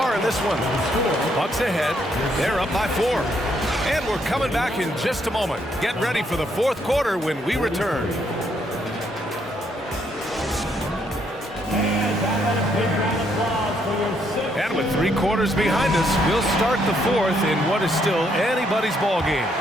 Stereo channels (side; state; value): both; normal; correlation 0.73